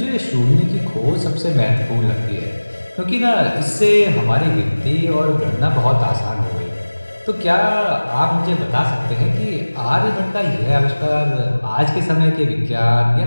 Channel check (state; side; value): inverted; both; correlation -1.00